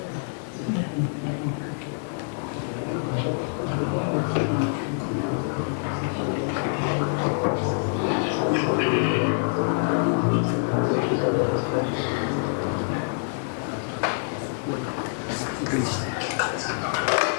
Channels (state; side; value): silent; right; 61 dB below the other